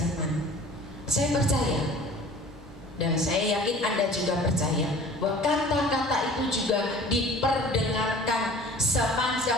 Saya percaya, dan saya yakin Anda juga percaya, bahwa kata-kata itu juga diperdengarkan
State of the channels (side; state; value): both; normal; correlation 0.46